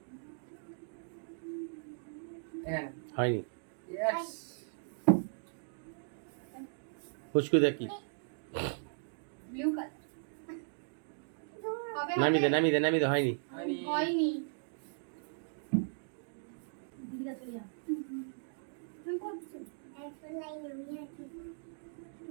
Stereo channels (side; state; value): left; silent; digital silence